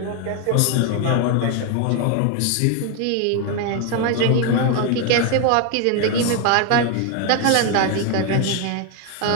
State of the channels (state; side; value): different; both; correlation 0.01